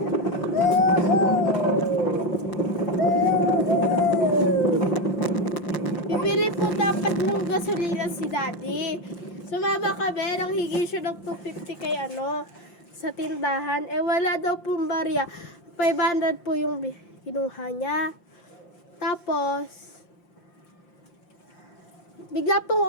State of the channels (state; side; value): late; right; 5.8 ms